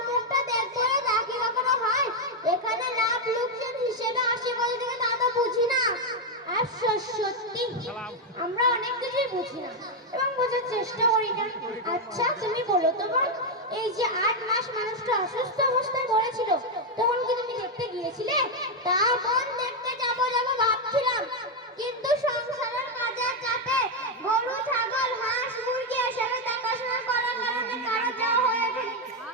মুখটা দেখবো তা কি কখনো হয়? এখানে লাভ লোকসান হিসেবে আসে বলে থেকে তা তো বুঝি না। আফসোস, সত্যি আমরা অনেক কিছুই বুঝি না এবং বোঝার চেষ্টা করি না। আচ্ছা তুমি বলো তো বোন, এই যে 8 মাস মানুষটা অসুস্থ অবস্থায় পড়েছিল, তখন কি তুমি দেখতে গিয়েছিলে? তা বোন, দেখতে যাবো ভাবছিলাম, কিন্তু সংসারের কাজের চাপে গরু, ছাগল, হাঁস, মুরগি এসবে দেখাশোনা করার কারণে কারো যাওয়া হয়ে ওঠেনি।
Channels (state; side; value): normal; both; correlation 0.03